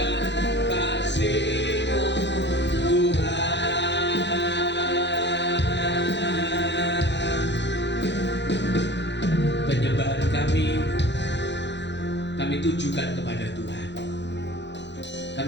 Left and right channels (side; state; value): right; late; 0.52 ms